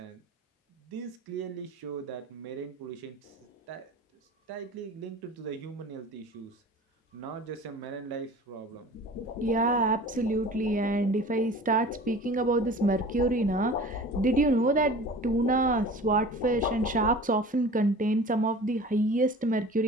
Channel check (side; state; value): both; normal; correlation 0.41